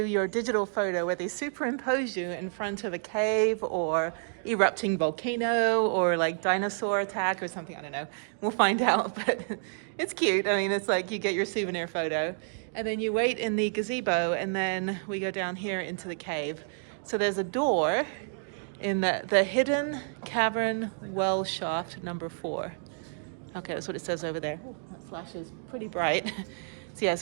your digital photo where they superimpose you in front of a cave or erupting volcano or like dinosaur attack or something, I don't know. We'll find out, but it's cute. I mean, it's like you get your souvenir photo and then you wait in the gazebo and then we go down here into the cave. So there's a door in the hidden cavern well shaft number 4. Okay, that's what it says over there. Ooh, that flash is pretty bright. So yeah,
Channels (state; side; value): silent; left; digital silence